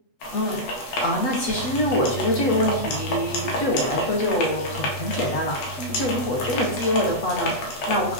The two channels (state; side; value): late; right; 8.2 ms